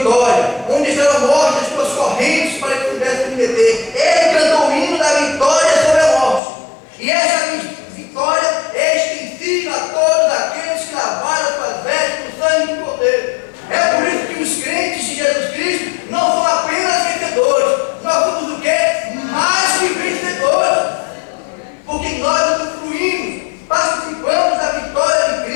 Onde estará a morte, as tuas correntes, para que pudesse me deter? Ele cantou o hino da vitória sobre a morte. E essa vitória é extensiva a todos aqueles que lavaram suas vestes no sangue do Cordeiro. É por isso que os crentes de Jesus Cristo não são apenas vencedores. Nós somos o quê?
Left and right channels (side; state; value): right; drops out; at 6.4 s